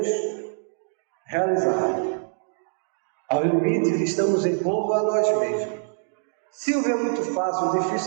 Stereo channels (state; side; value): silent; left; digital silence